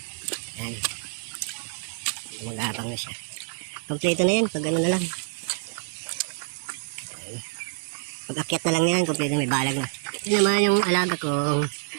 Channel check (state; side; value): silent; left; digital silence